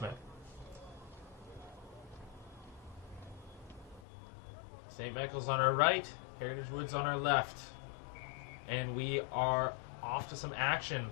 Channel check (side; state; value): right; drops out; at 4.0 s